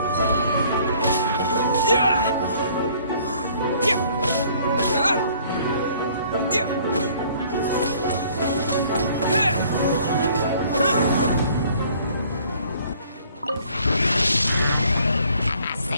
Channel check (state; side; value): inverted; both; correlation -0.58